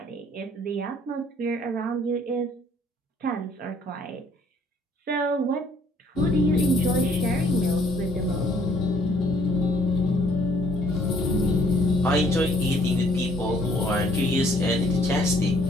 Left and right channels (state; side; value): normal; both; correlation 0.62